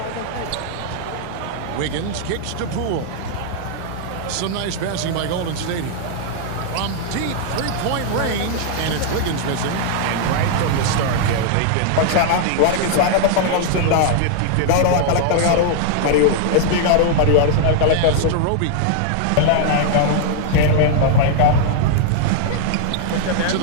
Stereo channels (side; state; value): both; different; correlation -0.01